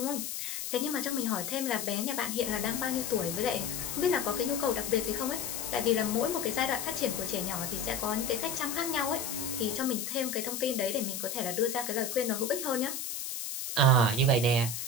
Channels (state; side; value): noise; left; hiss, 5 dB below the sound